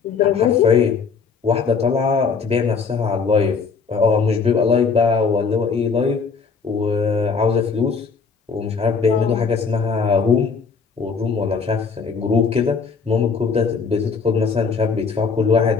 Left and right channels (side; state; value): right; quieter; 5.2 dB